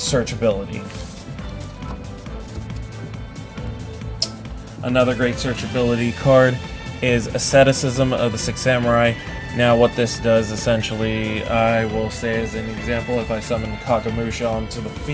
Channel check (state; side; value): identical; both; correlation 1.00